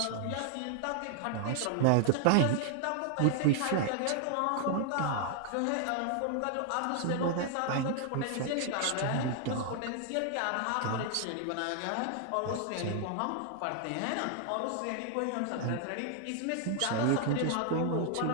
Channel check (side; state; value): both; different; correlation 0.00